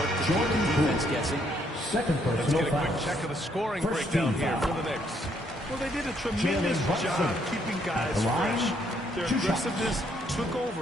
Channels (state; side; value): normal; both; correlation 0.70